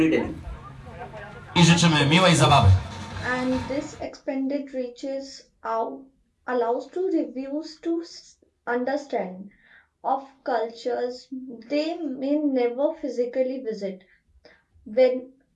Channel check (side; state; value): both; identical; correlation 1.00